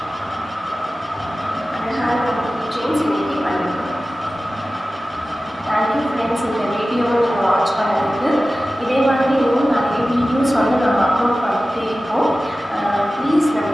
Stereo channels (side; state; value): both; normal; correlation 0.95